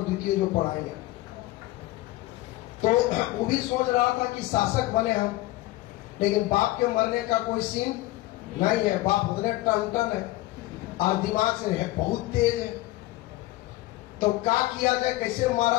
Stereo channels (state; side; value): quieter; right; 17.8 dB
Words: जो पढ़ाएंगे। तो वो भी सोच रहा था कि शासक बने हम, लेकिन बाप के मरने का कोई सीन नहीं है। बाप उतने टन है और दिमाग से है बहुत तेज है। तो क्या किया जाए, कैसे